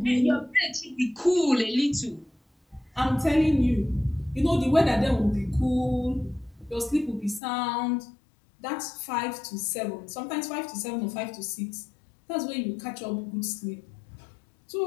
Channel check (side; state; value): right; drops out; at 7.4 s